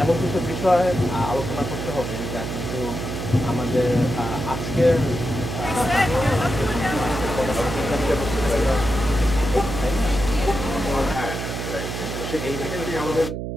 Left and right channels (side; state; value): right; noise; hum, 5 dB below the sound